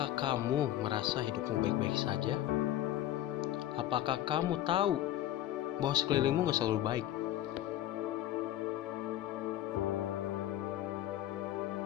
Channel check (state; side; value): quieter; right; 13.2 dB